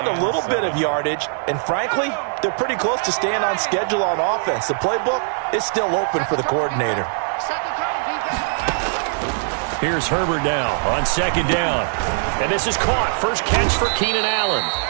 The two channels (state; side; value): silent; left; digital silence